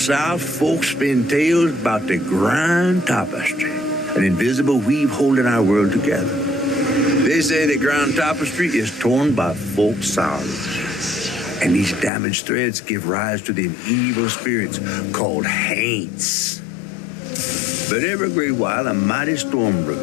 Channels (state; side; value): drops out; right; at 12.1 s